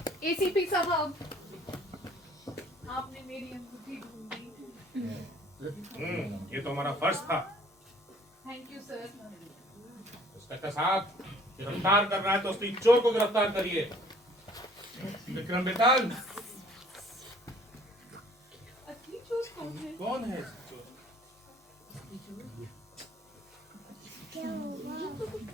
आपने मेरी अंगूठी ढूंढी। ये तो हमारा फर्ज था। Thank you sir. इंस्पेक्टर साहब, गिरफ्तार कर रहा है तो उसकी चोर को गिरफ्तार करिए। विक्रम बेताल, असली चोर कौन है? कौन है चोर?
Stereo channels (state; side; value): normal; both; correlation 0.56